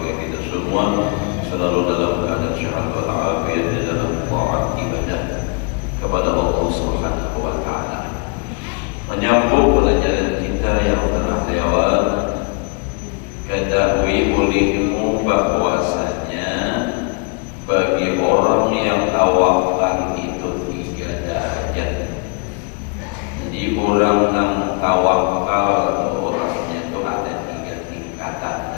kita semua selalu dalam keadaan sehat walafiat di dalam taat ibadah kepada Allah Subhanahu wa taala. Menyambung pelajaran kita yang telah lewat, ketahui olehmu bahwasanya bagi orang yang tawakal itu 3 derajat. Jadi orang yang tawakal orangnya itu ada 3 tingkatan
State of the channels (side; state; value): right; quieter; 33.3 dB